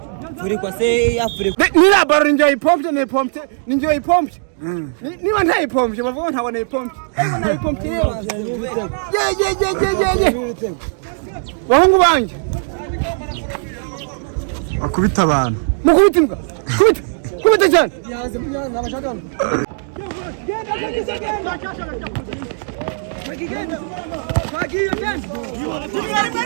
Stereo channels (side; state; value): left; silent; digital silence